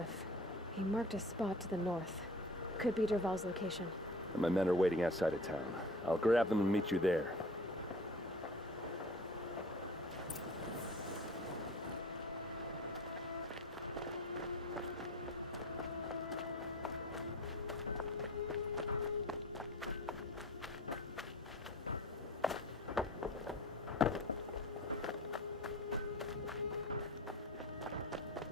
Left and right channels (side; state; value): both; normal; correlation 0.41